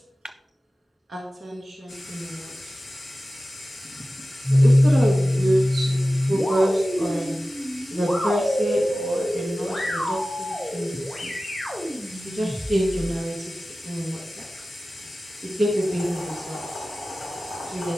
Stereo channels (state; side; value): normal; both; correlation 0.96